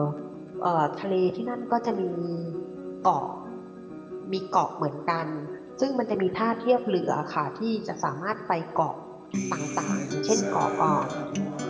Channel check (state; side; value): identical; both; correlation 1.00